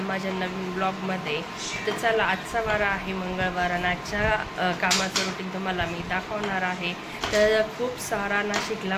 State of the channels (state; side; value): identical; both; correlation 1.00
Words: माझ्या नवीन ब्लॉगमध्ये. तर चला, आजचा वार आहे मंगळवार आणि आजच्या कामाचं रुटीन तुम्हाला मी दाखवणार आहे. तर खूप सारा नाशिकला